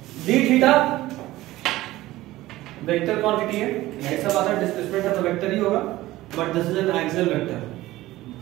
डी थीटा वेक्टर क्वांटिटी है, यही सब आता है। डिस्प्लेसमेंट है तो वेक्टर ही होगा, but this is an axial vector.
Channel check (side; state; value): left; quieter; 17.0 dB